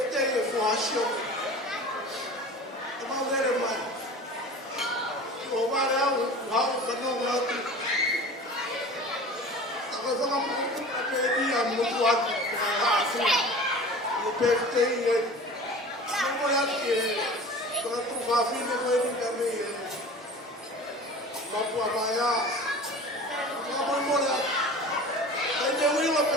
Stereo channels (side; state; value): both; normal; correlation 0.39